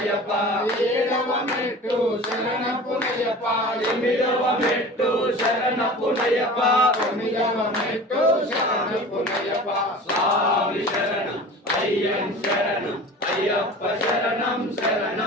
ఏడవ మెట్టు శరణపునయ్యప్ప ఎనిమిదవ మెట్టు శరణపునయ్యప్ప తొమ్మిదవ మెట్టు శరణపునయ్యప్ప స్వామి శరణం అయ్యన్ శరణం అయ్యప్ప శరణం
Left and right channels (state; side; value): normal; both; correlation 0.38